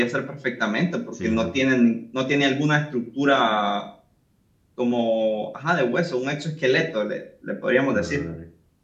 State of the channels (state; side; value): identical; both; correlation 1.00